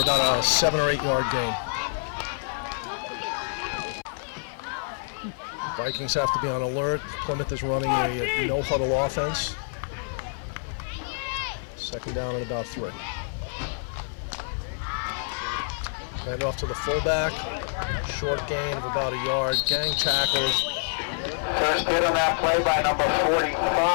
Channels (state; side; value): silent; right; 60 dB below the other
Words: about a 7 or 8 yard gain. Vikings have to be on alert. Plymouth is running a no-huddle offense. Second down and about 3. Hand off to the fullback. Short gain of about a yard. Gang tackles. First hit on that play by number